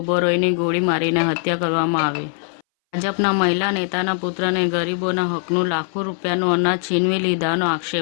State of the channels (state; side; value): silent; right; 62 dB below the other